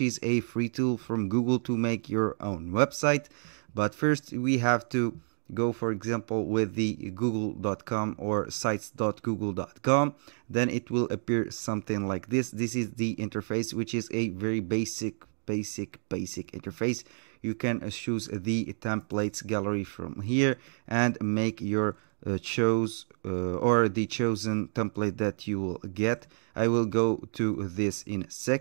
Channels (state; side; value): silent; left; digital silence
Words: a free tool from Google to make your own website. But first we have to go, for example, with the google.com or sites.google.com. Then it will appear something like this. This is the interface, which is a very basic interface. You can choose the templates gallery from here and make your choose or the chosen template that you will get. I will go to this in a